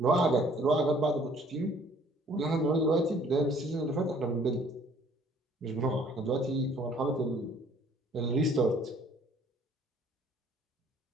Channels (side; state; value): both; normal; correlation 0.58